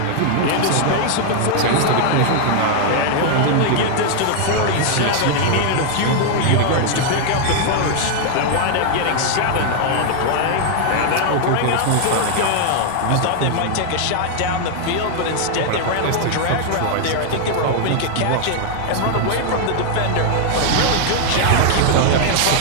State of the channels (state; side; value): different; both; correlation 0.00